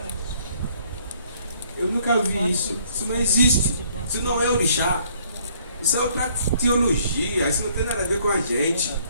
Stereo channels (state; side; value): inverted; both; correlation -0.63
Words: Eu nunca vi isso. Isso não existe. Isso não é orixá. Isso é outra teologia. Isso não tem nada a ver com a gente.